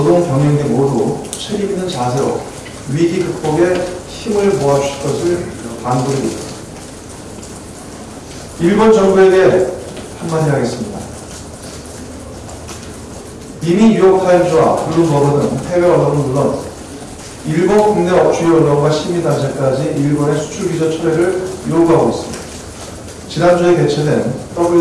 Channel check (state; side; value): identical; both; correlation 1.00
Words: 경영계 모두 책임있는 자세로 위기 극복에 힘을 모아주실 것을 당부드립니다. 일본 정부에게 한마디 하겠습니다. 이미 뉴욕타임즈와 블룸버그 등 해외 언론은 물론 일본 국내 주요 언론과 시민단체까지 일본의 수출규제 철회를 요구하고 있습니다. 지난주에 개최된